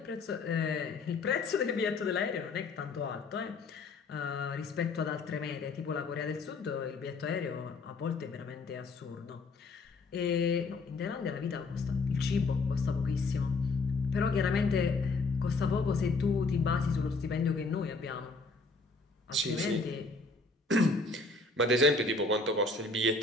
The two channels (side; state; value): right; quieter; 3.7 dB